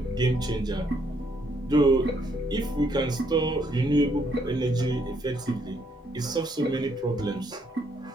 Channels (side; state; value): both; normal; correlation 0.71